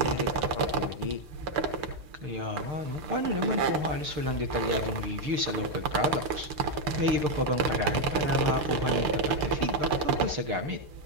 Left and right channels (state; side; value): late; left; 6.7 ms